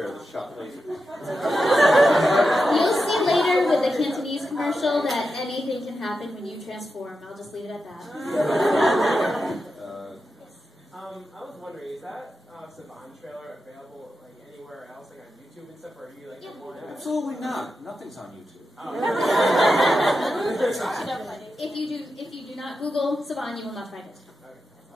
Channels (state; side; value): normal; both; correlation 0.89